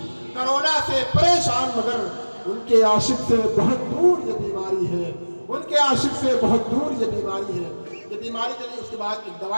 کرونا سے پریشان مگر ان کے عاشق سے بہت دور یہ بیماری ہے. ان کے عاشق سے بہت دور یہ بیماری ہے. یہ بیماری چلی, اس کے بعد ایک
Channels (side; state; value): both; inverted; correlation -1.00